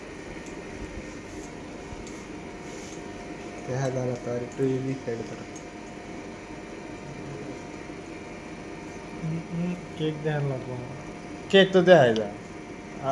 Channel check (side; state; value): both; identical; correlation 1.00